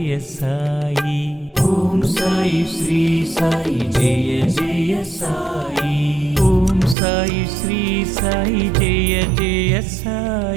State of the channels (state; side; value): drops out; left; at 7.0 s